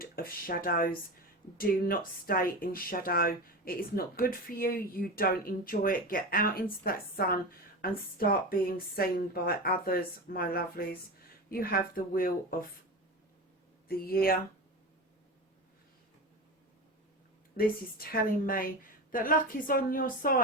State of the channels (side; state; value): both; normal; correlation 0.25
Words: of Shadows. Do not stay in shadow. It is not good for you. You don't enjoy it. Get out into that sun and start being seen by others, my lovelies. You have the wheel of the year. This is telling me that luck is on your